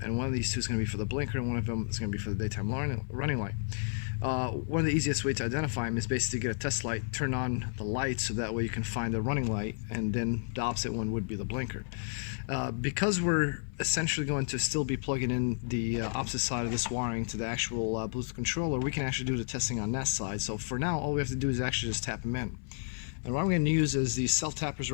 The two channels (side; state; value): right; silent; 56 dB below the other